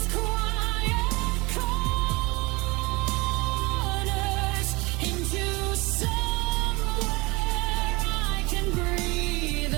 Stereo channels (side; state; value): left; quieter; 24.6 dB